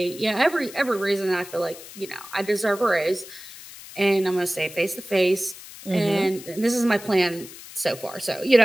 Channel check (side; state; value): left; noise; hiss, 16 dB below the sound